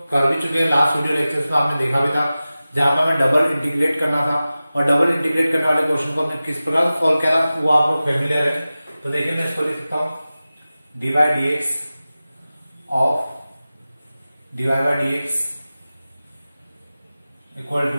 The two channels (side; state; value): both; inverted; correlation -0.96